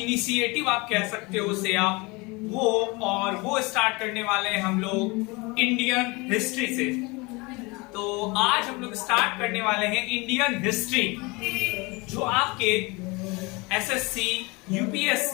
आप कह सकते हो उसे आप वो स्टार्ट करने वाले हैं हम लोग इंडियन हिस्ट्री से। तो आज हम लोग स्टार्ट करने वाले हैं इंडियन हिस्ट्री, जो आपके एसएससी,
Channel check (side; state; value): right; quieter; 25.9 dB